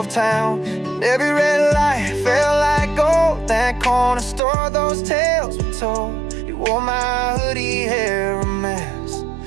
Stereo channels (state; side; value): drops out; left; at 4.4 s